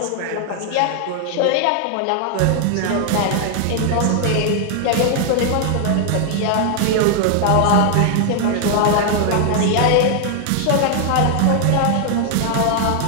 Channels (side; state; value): both; different; correlation 0.00